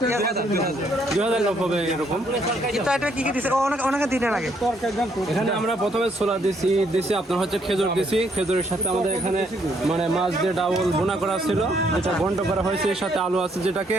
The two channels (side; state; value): both; normal; correlation 0.70